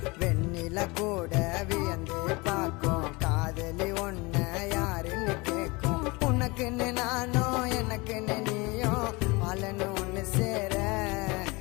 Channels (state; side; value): quieter; right; 25.2 dB